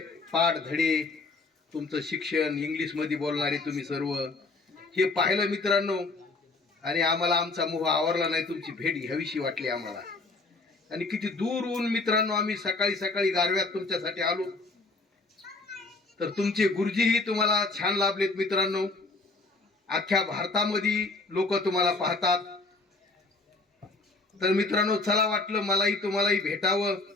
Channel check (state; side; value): quieter; right; 3.5 dB